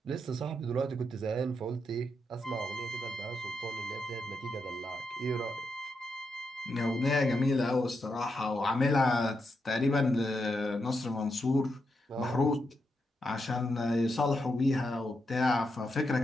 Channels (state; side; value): normal; both; correlation 0.84